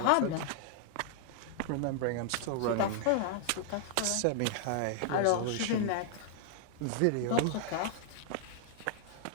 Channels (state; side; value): different; both; correlation -0.01